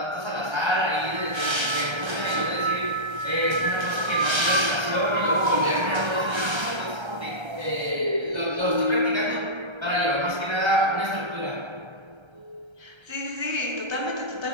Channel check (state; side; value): late; left; 1.3 ms